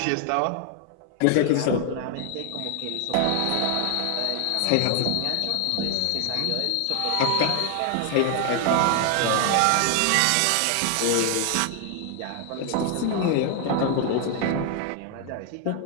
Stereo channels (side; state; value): both; different; correlation 0.00